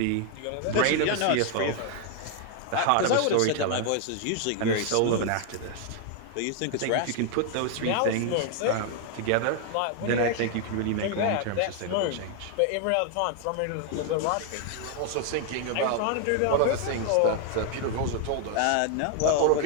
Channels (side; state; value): both; different; correlation 0.00